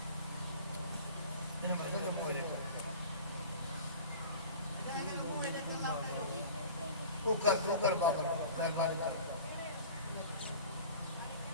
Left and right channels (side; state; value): both; inverted; correlation -0.41